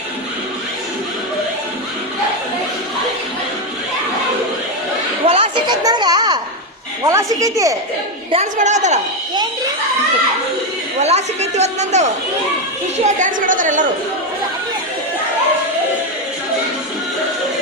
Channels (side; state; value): both; normal; correlation 0.08